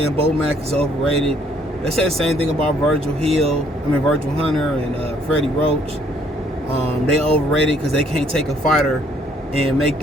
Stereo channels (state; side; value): normal; both; correlation 0.64